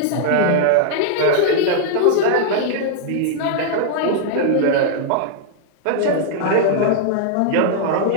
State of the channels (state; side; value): different; both; correlation -0.01